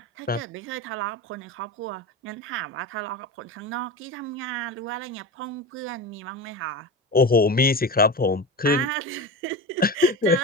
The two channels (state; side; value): normal; both; correlation 0.26